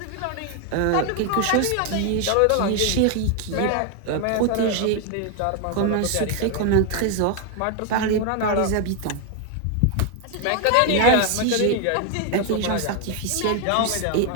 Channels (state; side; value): different; both; correlation 0.01